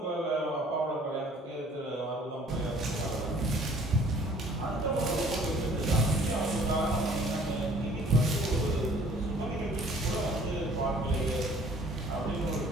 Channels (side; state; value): both; normal; correlation 0.54